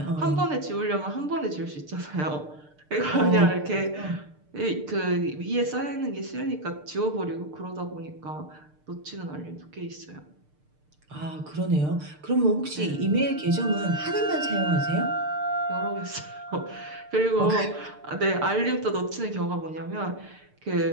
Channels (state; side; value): late; left; 6.7 ms